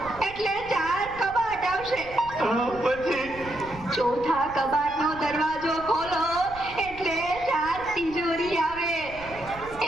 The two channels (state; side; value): noise; right; rumble, 17 dB below the sound